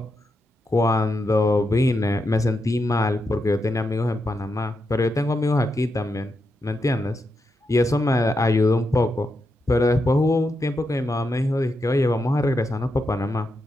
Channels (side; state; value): both; normal; correlation 0.85